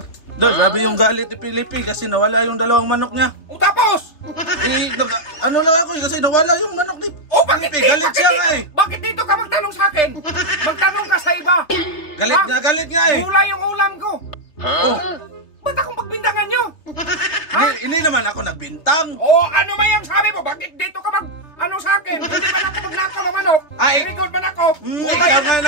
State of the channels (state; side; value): late; right; 3.4 ms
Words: Grabe yung galit ni Pilipi kasi nawala yung dalawang manok niya. O tapos! Ano lang ako kasi nawala yung manok ni O bakit Pilipi. Galit siya nga eh. Bakit dito ka magtanong sa akin? Magtanong ka sa iba. Galit nga eh. Gulay yung ulam ko. Oh, Ba't akong pagbintangan nyo? hindi naman ako nagbintang. O ano ba yung sabi mo? Bakit dito ka ano sa akin? Hindi ba ako magnakaw ng manok? Ay. Record man ako? Ikaw nga